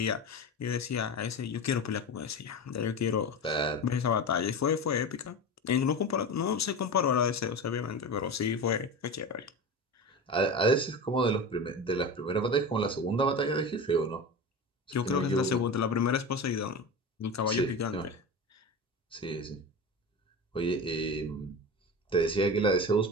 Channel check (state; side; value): normal; both; correlation 0.26